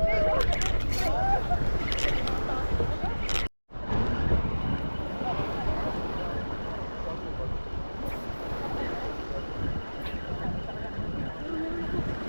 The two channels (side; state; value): both; inverted; correlation -1.00